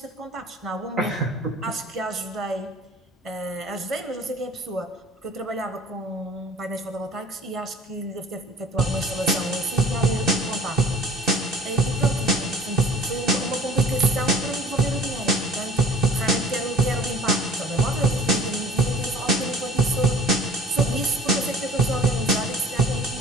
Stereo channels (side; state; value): both; normal; correlation 0.46